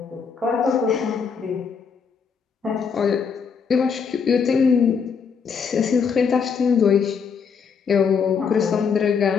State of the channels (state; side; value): quieter; right; 6.1 dB